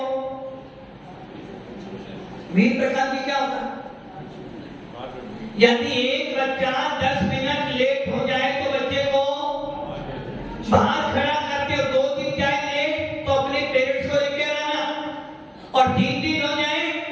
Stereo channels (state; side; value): identical; both; correlation 1.00